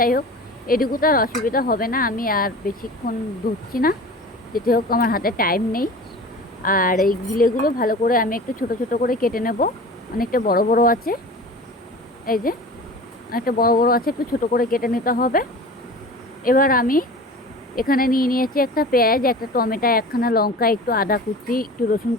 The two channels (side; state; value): both; normal; correlation 0.37